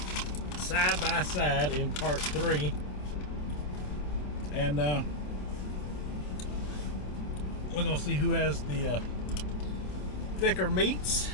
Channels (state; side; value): late; right; 27 ms